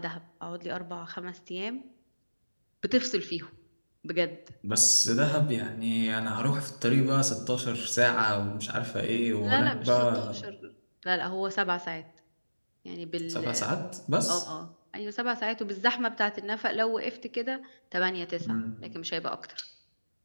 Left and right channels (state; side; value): inverted; both; correlation -1.00